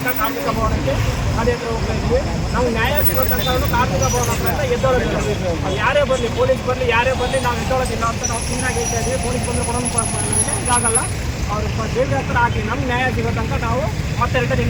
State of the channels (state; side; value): identical; both; correlation 1.00